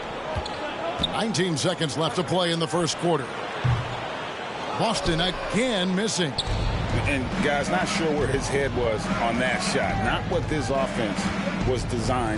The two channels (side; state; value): both; identical; correlation 1.00